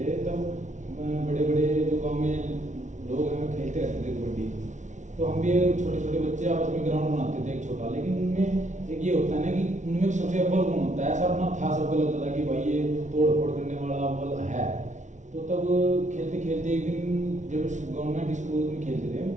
तब बड़े बड़े जो गांव में लोग हैं खेलते रहते थे कबड्डी। तो हम भी छोटे छोटे बच्चे आपस में ग्राउंड बनाते थे एक छोटा, लेकिन उनमें एक ये होता है ना कि उनमें सबसे अव्वल गुण होता है, ऐसा अपना था सबको लगता था कि भाई ये तोड़ फोड़ करने वाला अव्वल है। तो तब खेलते खेलते एक दिन जब गवर्नमेंट स्कूल में खेलते थे,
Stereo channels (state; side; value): late; left; 0.35 ms